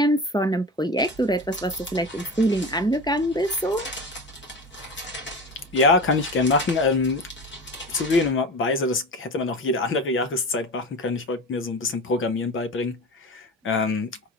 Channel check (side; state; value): both; normal; correlation 0.30